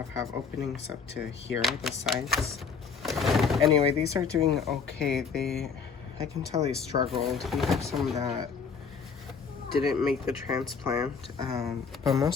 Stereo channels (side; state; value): right; quieter; 5.7 dB